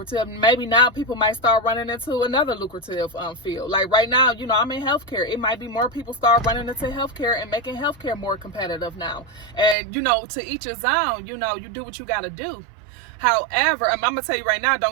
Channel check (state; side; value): drops out; left; at 9.8 s